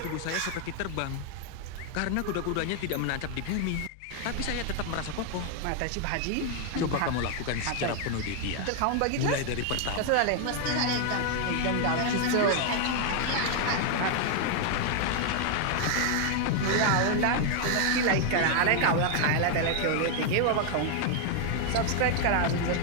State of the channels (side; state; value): both; different; correlation 0.00